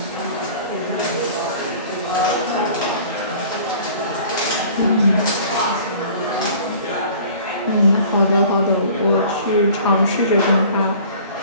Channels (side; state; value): both; inverted; correlation -0.48